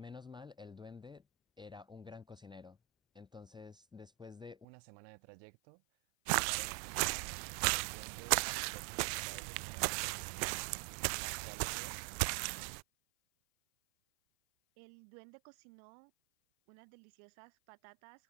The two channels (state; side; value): drops out; left; at 4.7 s